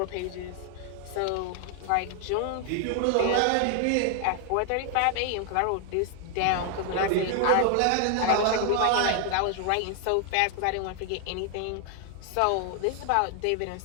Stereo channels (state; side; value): different; both; correlation 0.00